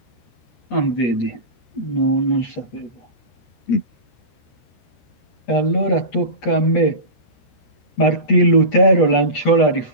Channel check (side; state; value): right; late; 13 ms